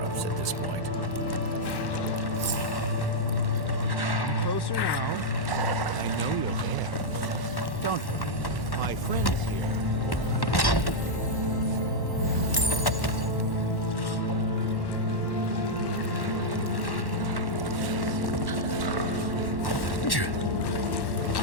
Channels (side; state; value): right; late; 1.1 ms